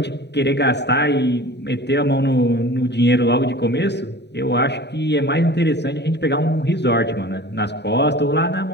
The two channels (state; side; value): late; right; 0.50 ms